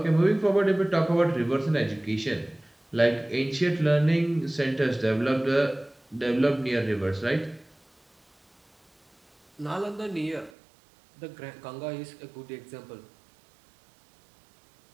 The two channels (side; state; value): left; drops out; at 10.5 s